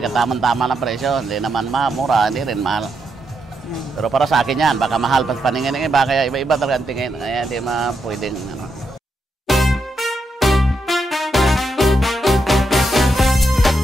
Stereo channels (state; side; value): normal; both; correlation 0.82